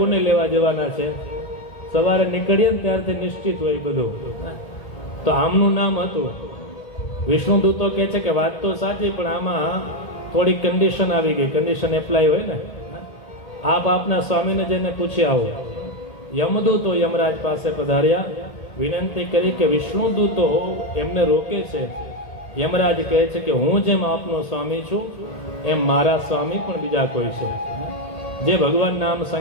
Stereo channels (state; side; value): late; right; 1.8 ms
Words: લેવા જવાના છે. સવારે નીકળીએ ને ત્યારથી નિશ્ચિત હોય બધું. તો આમનું નામ હતું. વિષ્ણુદૂતો કહે છે કે વાત તો સાચી, પણ આમાં થોડી કન્ડિશન આવી ગઈ. કન્ડિશન એપ્લાય હોય ને, આપ આપના સ્વામીને જઈને પૂછી આવો. યમદૂતો યમરાજ પાસે પધાર્યા, વિનંતી કરી કે વિષ્ણુદૂતો એમને રોકે છે. યમરાજ કહે છે કે હું જેમ આપનો સ્વામી છું એમ મારા સ્વામી પણ બીજા કોઈ છે. જે ભગવાન નામ